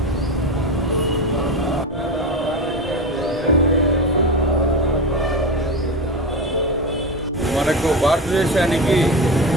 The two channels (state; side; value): normal; both; correlation 0.22